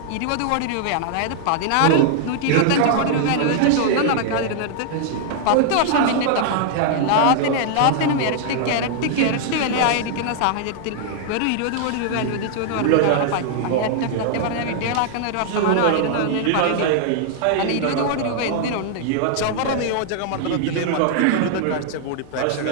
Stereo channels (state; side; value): different; both; correlation -0.01